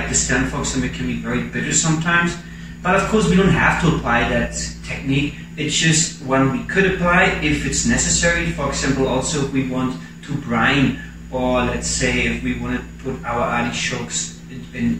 the stem, for example, can be very bitter sometimes. But of course we don't have to apply that technique. It's just one we could apply if it's necessary. For example, also if we want to brine, or let's say if we want to put our artichokes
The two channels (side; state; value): both; identical; correlation 1.00